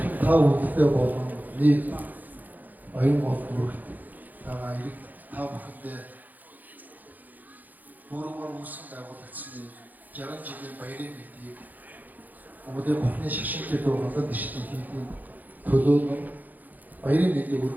та бүхэндээ болон нэг баян гол бүрт байгаа ирэг та бүхэндээ бүрмөр үсэн байгуулагдсны 60 жилийн баярын мэдээг Өмнөд Бурхны шашинтай дуугаад дэштэй хийх төлөө нь баярын мэдээг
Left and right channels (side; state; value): left; late; 0.083 ms